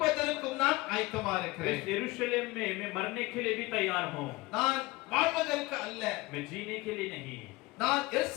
நான் ஆயத்தமா इस இருக்கிறேன். यरूशलेम में मैं मरने के लिए भी तैयार हूँ, நான் வாழ்வதற்கு அல்ல. मैं जीने के लिए नहीं। நான்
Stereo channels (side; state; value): right; quieter; 21.8 dB